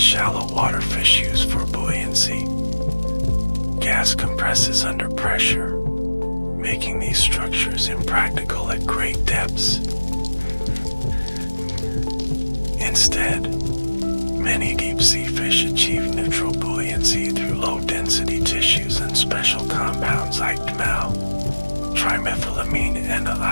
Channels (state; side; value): inverted; both; correlation -1.00